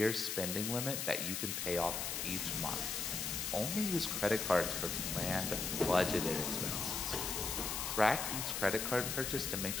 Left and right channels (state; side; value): noise; left; hiss, 2 dB below the sound